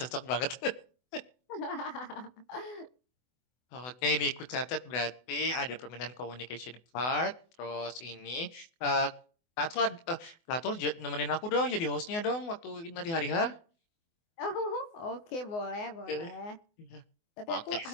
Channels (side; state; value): right; late; 24 ms